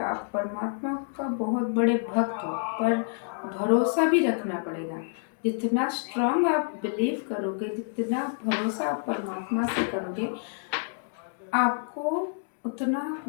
परमात्मा का बहुत बड़े भक्त हो, पर भरोसा भी रखना पड़ेगा। जितना स्ट्रांग आप बिलीव करोगे, जितना भरोसा आप परमात्मा से करोगे, आपको उतना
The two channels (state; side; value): silent; right; digital silence